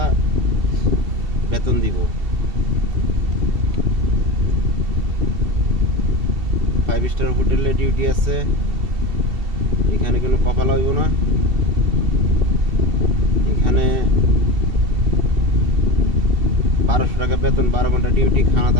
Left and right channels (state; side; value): late; left; 2.7 ms